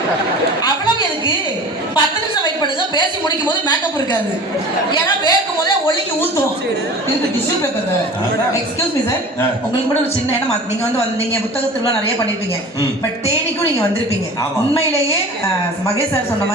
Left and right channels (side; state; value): both; normal; correlation 0.40